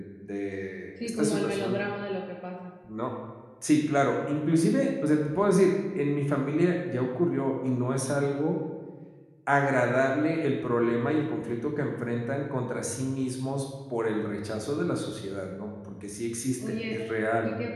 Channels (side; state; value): both; identical; correlation 1.00